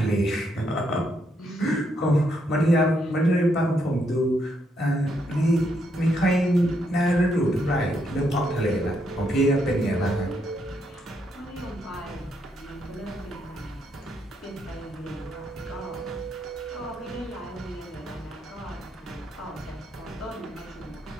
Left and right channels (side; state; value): both; normal; correlation 0.76